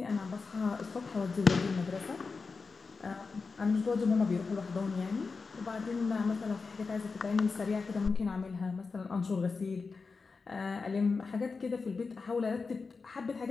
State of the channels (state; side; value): quieter; right; 4.5 dB